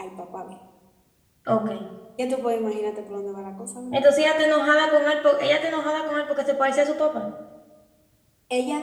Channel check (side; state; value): both; identical; correlation 1.00